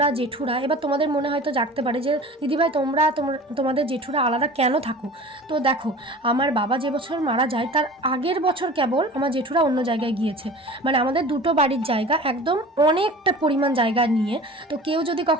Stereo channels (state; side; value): normal; both; correlation 0.40